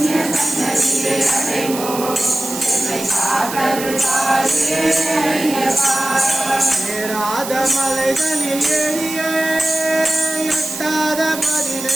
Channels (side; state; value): right; noise; hiss, 9 dB below the sound